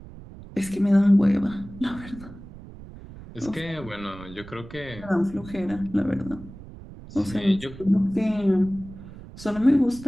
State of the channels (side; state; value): right; noise; rumble, 16 dB below the sound